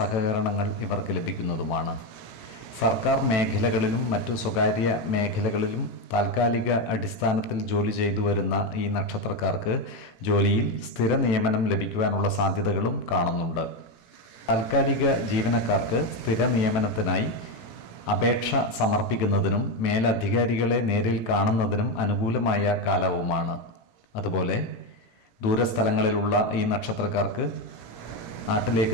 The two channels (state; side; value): late; right; 18 ms